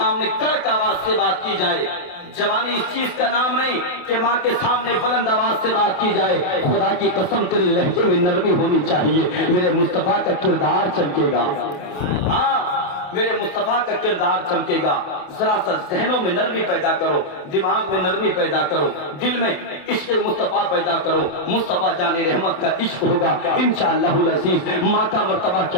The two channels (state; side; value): late; right; 27 ms